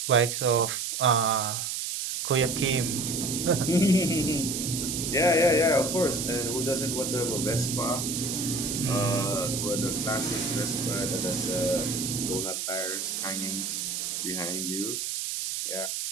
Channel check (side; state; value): right; noise; hiss, 3 dB below the sound